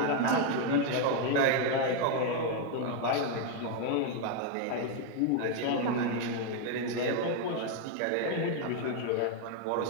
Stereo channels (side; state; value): both; different; correlation 0.01